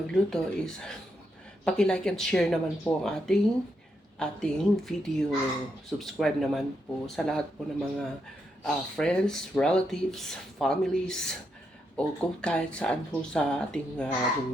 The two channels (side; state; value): both; normal; correlation 0.81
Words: is paki-like and share naman po ang ating video. Subscribe naman po sa lahat po ng mga friends, relatives, families, o kung kahit saan po sa ating